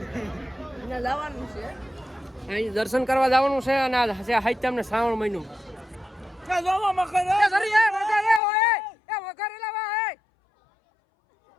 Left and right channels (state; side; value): drops out; right; at 8.4 s